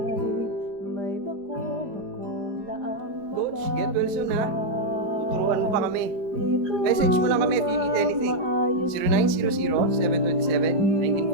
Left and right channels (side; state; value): left; late; 4.9 ms